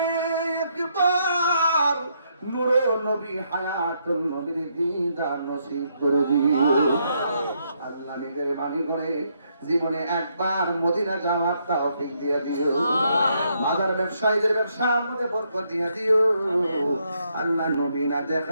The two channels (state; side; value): inverted; both; correlation -0.75